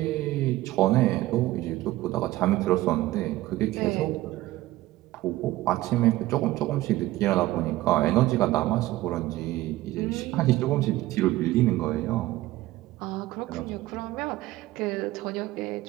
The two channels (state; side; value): quieter; left; 16.8 dB